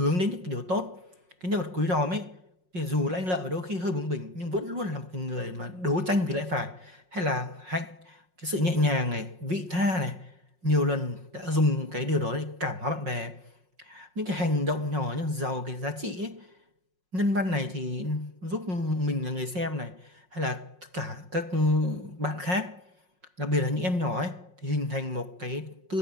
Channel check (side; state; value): left; late; 5.5 ms